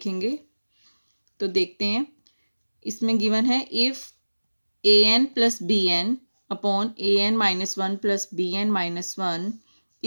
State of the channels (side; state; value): both; inverted; correlation -1.00